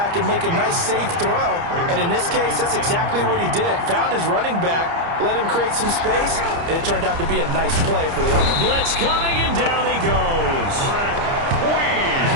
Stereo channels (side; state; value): left; late; 30 ms